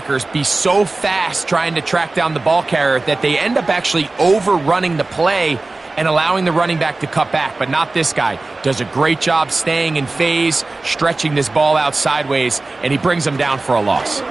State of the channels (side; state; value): left; quieter; 3.3 dB